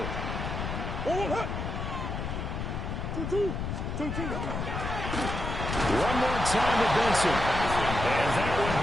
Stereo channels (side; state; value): left; noise; rumble, 4 dB below the sound